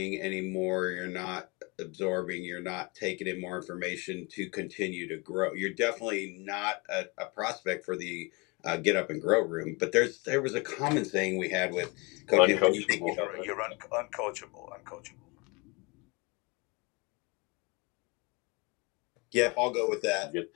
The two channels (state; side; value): quieter; right; 28.2 dB